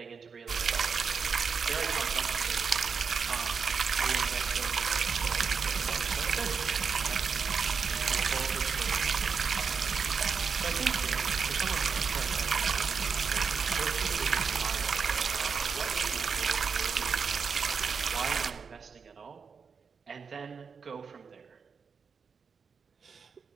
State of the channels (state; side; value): quieter; left; 5.8 dB